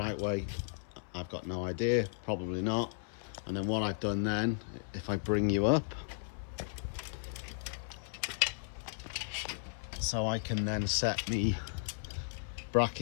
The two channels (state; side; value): silent; right; 54 dB below the other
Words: way, I've got no idea, probably not. And then what I've done then, if I bring you up, so I can then set me